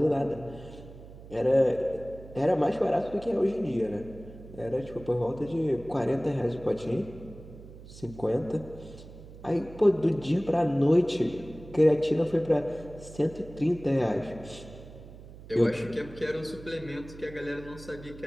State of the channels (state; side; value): noise; right; hum, 17 dB below the sound